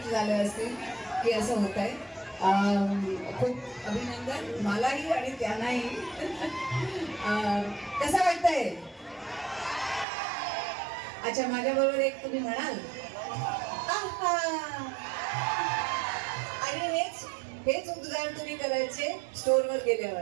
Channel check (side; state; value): left; drops out; at 10.1 s